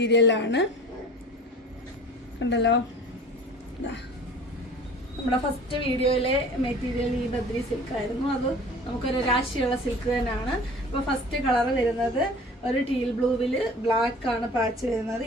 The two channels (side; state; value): both; normal; correlation 0.44